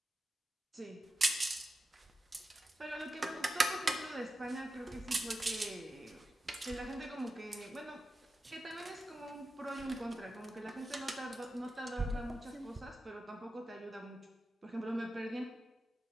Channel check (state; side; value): normal; both; correlation 0.92